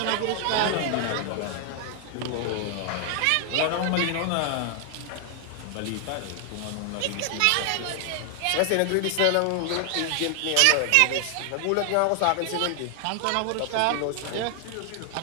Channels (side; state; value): both; different; correlation 0.00